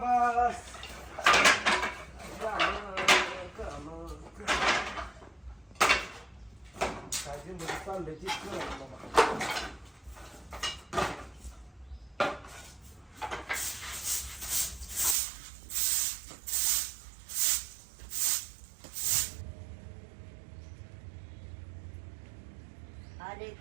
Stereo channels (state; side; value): drops out; left; at 15.2 s